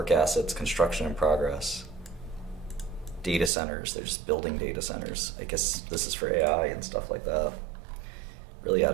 assets, construction in progress. Data centers. They're just building data centers. I guess this is for AI and stuff like that. Really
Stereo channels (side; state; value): left; drops out; at 3.5 s